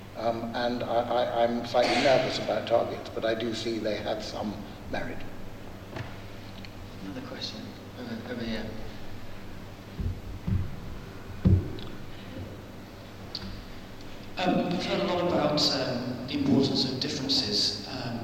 And I'm slightly nervous about targets, but I do see they have some merit. Another question over here. We've heard a lot about the importance of differences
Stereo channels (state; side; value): identical; both; correlation 1.00